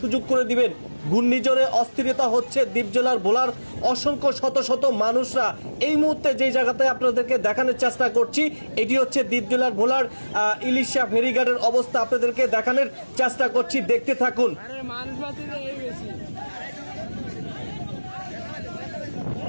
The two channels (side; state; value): both; inverted; correlation -1.00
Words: করে দিবেন। ঘূর্ণিঝড়ে অস্থিরতা হচ্ছে দ্বীপ জেলার ভোলার অসংখ্য শত মানুষরা। এই মুহূর্তে যে জায়গাতে আপনাদেরকে দেখানোর চেষ্টা করছি, এটি হচ্ছে দ্বীপ জেলার ভোলার ইলিশা ফেরিঘাটের অবস্থা আপনাদেরকে দেখানোর চেষ্টা করছি। দেখতে থাকুন।